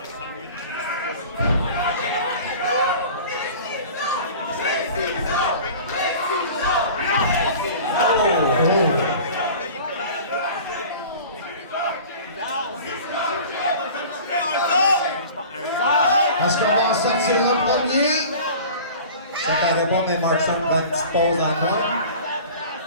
Est-ce qu'on va en sortir un premier? Ça paraît pas, mais Markson prend une petite pause en moi.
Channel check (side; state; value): both; inverted; correlation -0.41